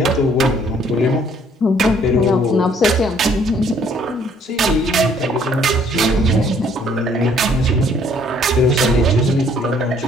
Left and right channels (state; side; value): normal; both; correlation 0.62